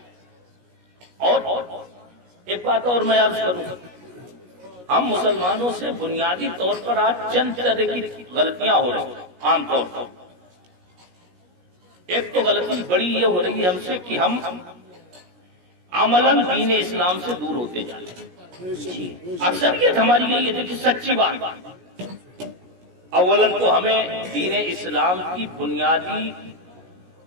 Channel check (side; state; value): left; late; 17 ms